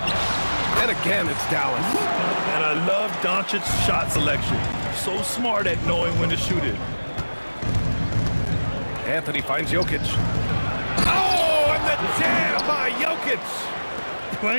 And again, it's Dallas. And I love Doncic's shot selection. So smart at knowing when to shoot it. Anthony finds Jokic. Oh, and the jam by Jokic.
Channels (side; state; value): both; inverted; correlation -1.00